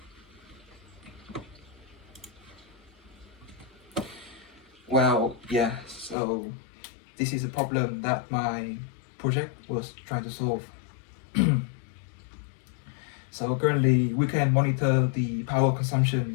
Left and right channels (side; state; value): right; drops out; at 6.2 s